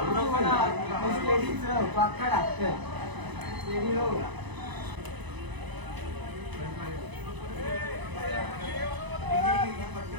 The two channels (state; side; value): late; left; 1.0 ms